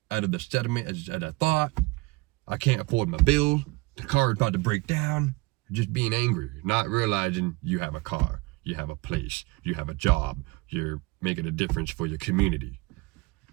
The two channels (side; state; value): left; quieter; 24.0 dB